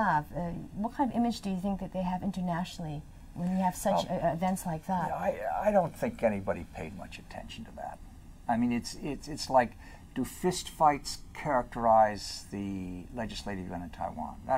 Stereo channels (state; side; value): identical; both; correlation 1.00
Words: What kind of image do you think that they have internationally when you have such events like that? I don't think anybody paid much attention to that. I mean, it's like, do fist fights characterize the legislative yuan in Taiwan?